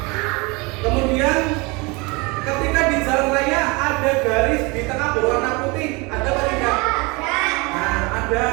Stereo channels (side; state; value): left; quieter; 26.9 dB